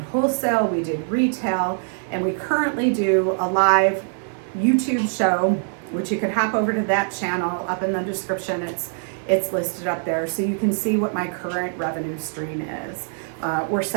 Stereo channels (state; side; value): silent; left; 63 dB below the other